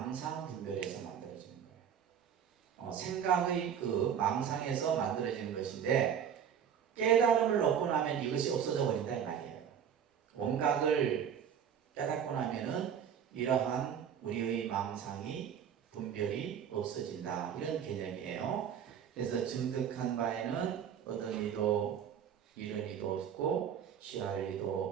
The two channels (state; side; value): quieter; left; 8.4 dB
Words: 분별에서 만들어지는 거예요. 생각의 그 망상에서 만들어지는 것인데, 깨달음을 얻고 나면 이것이 없어져 버린다 이 말이에요. 원각을 깨닫고 나면은 이러한 우리의 망상이 분별이 없어진다, 이런 개념이에요. 그래서 증득한 바에는 얻은 이도 잃은 이도 없고 취할